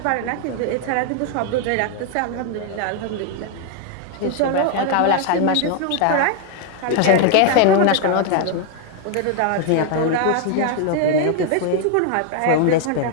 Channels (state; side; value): different; both; correlation 0.00